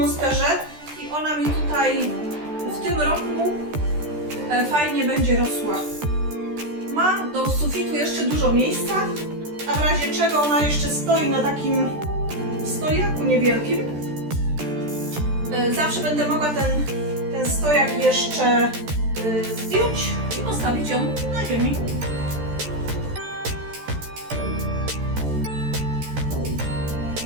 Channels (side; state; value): left; late; 13 ms